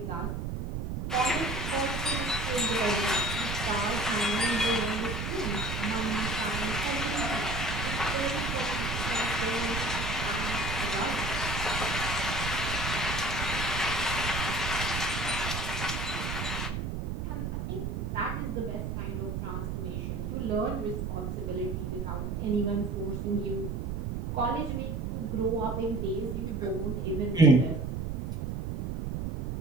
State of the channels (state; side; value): noise; right; rumble, 3 dB below the sound